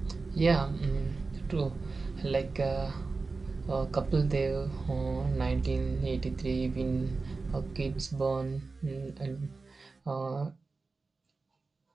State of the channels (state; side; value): quieter; left; 4.0 dB